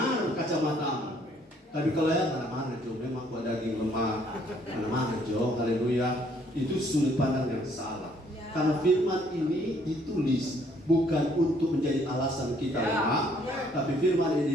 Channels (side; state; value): both; normal; correlation 0.65